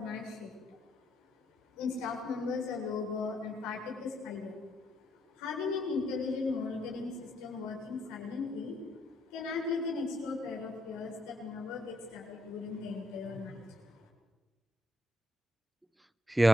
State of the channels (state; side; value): normal; both; correlation 0.74